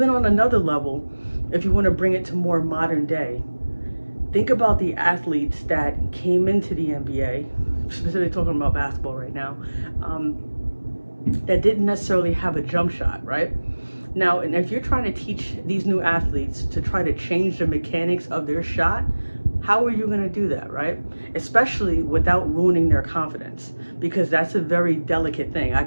on another level, if you want to bring it to more modern day, think about the athletes that came into the NBA, specifically talking about basketball right now, that didn't necessarily have a jump shot, right? Now, and if you're trying to teach these new athletes to try to change the mechanics of their shot, how are you going to do that, right? Especially without ruining their confidence, because that's a very delicate thing. I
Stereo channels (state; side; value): inverted; both; correlation -1.00